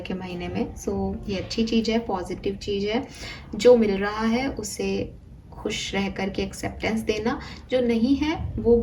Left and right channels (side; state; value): both; identical; correlation 1.00